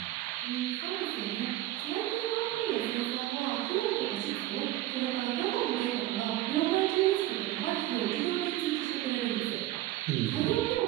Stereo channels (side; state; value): left; quieter; 15.3 dB